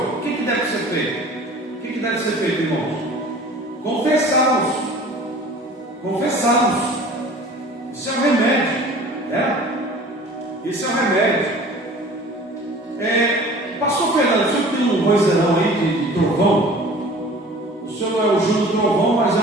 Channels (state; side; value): normal; both; correlation 0.45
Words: O que deve ser feito? O que deve ser feito, irmãos? Confessá-los. Confessá-los. Isso é o remédio, né? Isso é o remédio. Pastor Fernando, o senhor tem um vozeirão aí de trovão? O senhor não é o Júlio Trovão, mas é